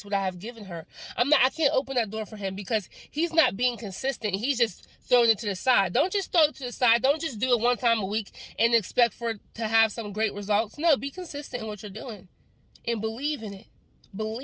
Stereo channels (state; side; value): identical; both; correlation 1.00